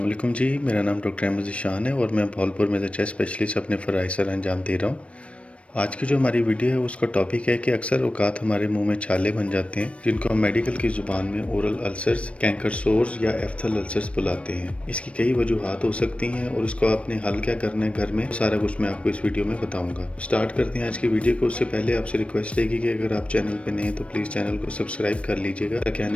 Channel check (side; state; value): right; late; 0.062 ms